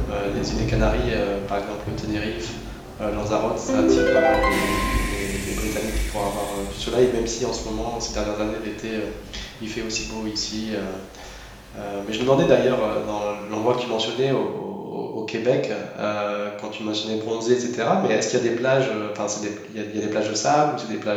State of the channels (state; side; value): identical; both; correlation 1.00